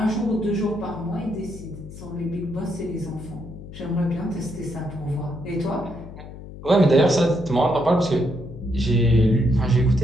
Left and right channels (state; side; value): noise; left; hum, 14 dB below the sound